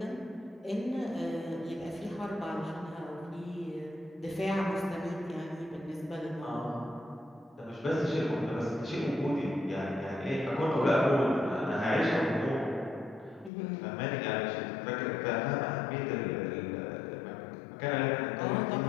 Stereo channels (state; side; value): drops out; right; at 13.5 s